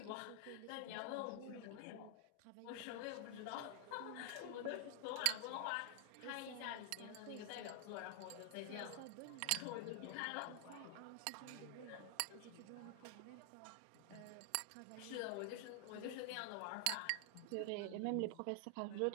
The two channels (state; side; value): different; both; correlation 0.00